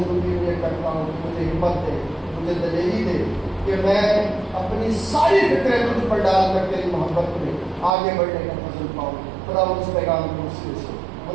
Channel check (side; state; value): left; drops out; at 7.9 s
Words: میں کرتا ہوں کہ مجھے ہمت دے، مجھے دلیری دے کہ میں اپنی ساری فکریں تجھ پر ڈال کر تیری محبت میں آگے بڑھنے کا فضل پاؤں. خداوند اس پیغام کے وسیلے سے